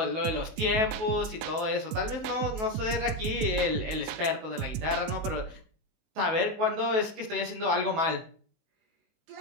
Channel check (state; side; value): late; left; 19 ms